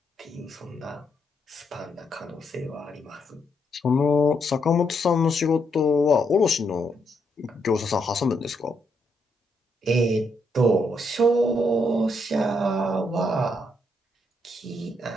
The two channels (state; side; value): normal; both; correlation 0.77